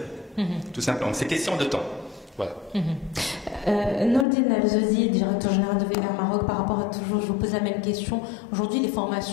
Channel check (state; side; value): drops out; right; at 4.2 s